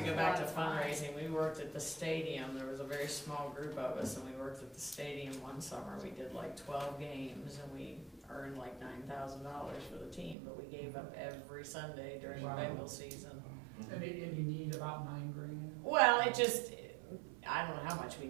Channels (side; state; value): left; drops out; at 10.4 s